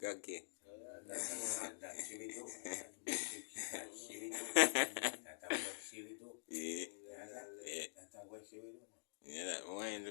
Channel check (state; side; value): silent; right; digital silence